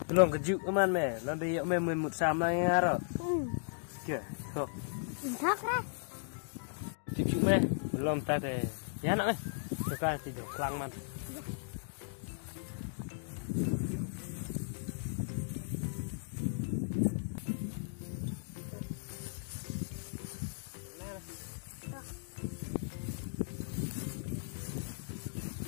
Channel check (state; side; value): silent; right; digital silence